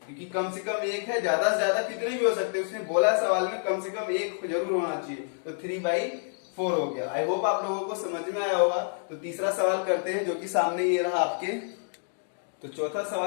क्योंकि कम से कम एक है, ज्यादा से ज्यादा कितने भी हो सकते हैं। उसने बोला सवाल में कम से कम एक जरूर होना चाहिए, तो 3/4 हो गया। आई होप आप लोगों को समझ में आया होगा। तो तीसरा सवाल करते हैं, जो कि सामने ये रहा आपके। तो तीसरा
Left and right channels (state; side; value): silent; right; digital silence